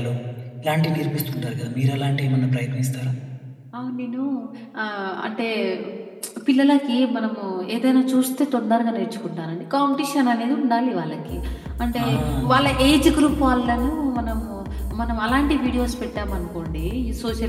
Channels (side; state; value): both; identical; correlation 1.00